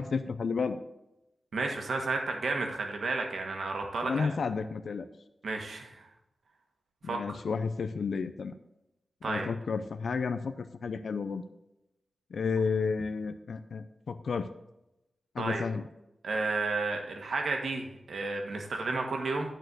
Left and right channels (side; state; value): both; normal; correlation 0.85